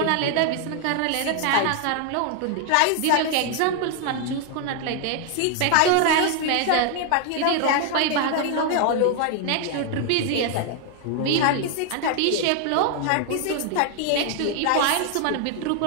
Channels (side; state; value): both; different; correlation 0.00